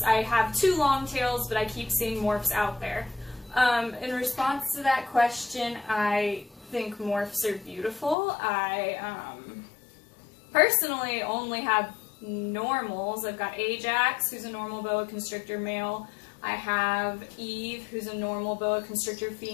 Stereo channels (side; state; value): right; drops out; at 8.2 s